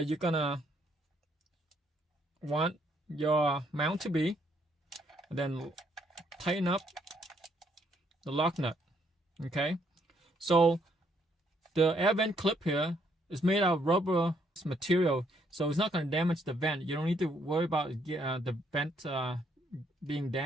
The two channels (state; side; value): normal; both; correlation 0.70